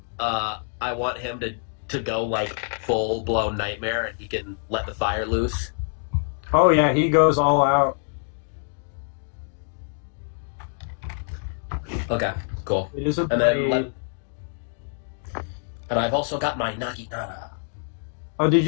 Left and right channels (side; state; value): right; silent; digital silence